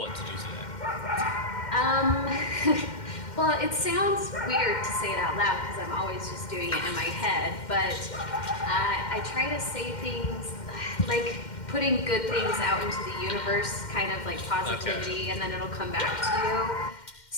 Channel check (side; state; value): right; late; 2.1 ms